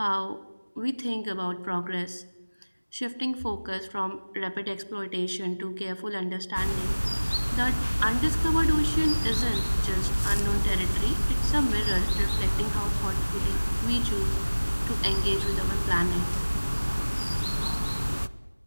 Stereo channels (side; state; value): both; inverted; correlation -1.00